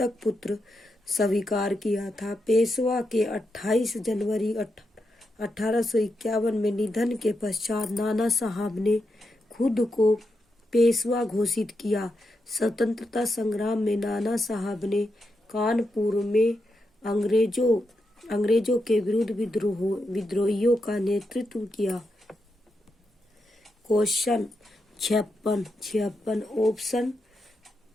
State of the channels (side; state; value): both; normal; correlation 0.85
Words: पुत्र स्वीकार किया था। पेशवा के 28 जनवरी 1851 में निधन के पश्चात नाना साहब ने खुद को पेशवा घोषित किया। स्वतंत्रता संग्राम में नाना साहब ने कानपुर में अंग्रेजों के विरुद्ध विद्रोहियों का नेतृत्व किया। क्वेश्चन 56 ऑप्शन